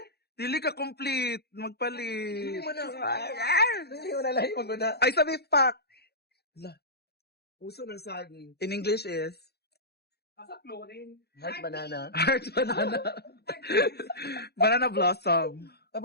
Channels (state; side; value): late; right; 0.47 ms